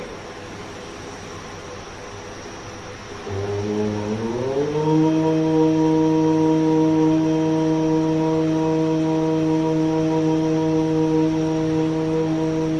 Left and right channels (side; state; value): both; identical; correlation 1.00